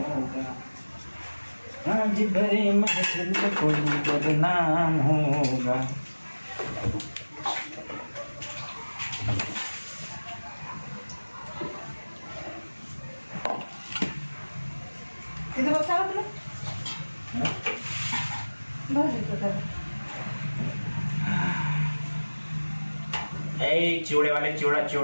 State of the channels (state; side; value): inverted; both; correlation -1.00